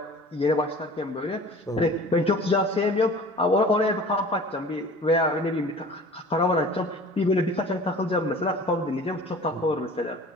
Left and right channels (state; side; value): normal; both; correlation 0.44